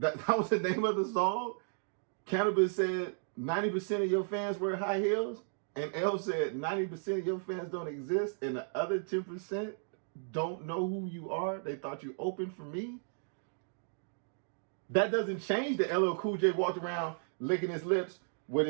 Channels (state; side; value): silent; left; digital silence